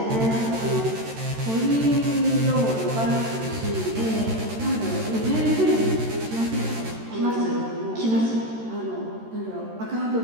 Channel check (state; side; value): late; left; 13 ms